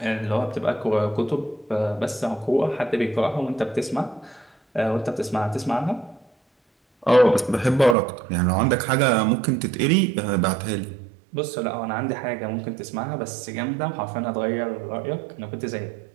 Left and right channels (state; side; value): drops out; left; at 8.0 s